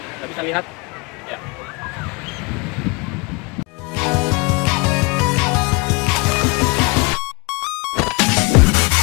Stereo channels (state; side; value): quieter; right; 28.2 dB